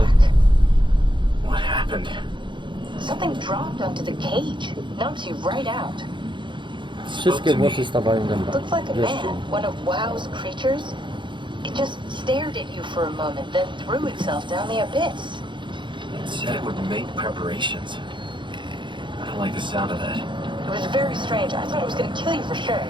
back. What happened? Something dropped onto the cage. Knocks you right out. Wszystkie włosy stawają dęba. Looks like a Wreszcie. man, one of WoW's creatures. It just stared at you for a moment, then threw itself down the abyss. It said it would make preparations. I don't like the sound of that. It was very strange. I thought it was going to kill you for sure.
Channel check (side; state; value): left; late; 0.23 ms